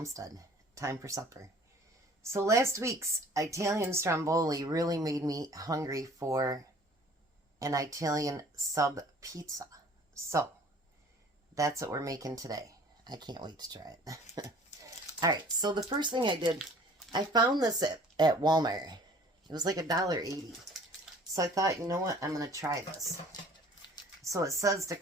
Time for supper. So last week's Italian stromboli really made me hungry for an Italian sub pizza. So that's what we're making today. I can't wait to try it. Alright, so the first thing I did, I found this at Walmart. It was like $1.80. So I thought, you know what, I'm going to try this. So it says to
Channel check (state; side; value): normal; both; correlation 0.51